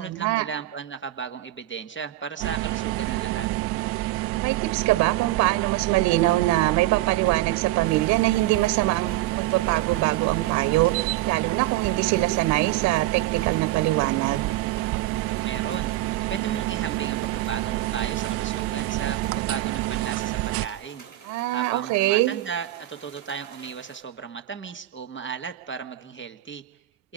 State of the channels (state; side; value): quieter; left; 16.0 dB